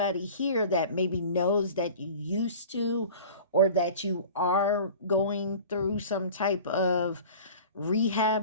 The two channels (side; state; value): both; inverted; correlation -0.40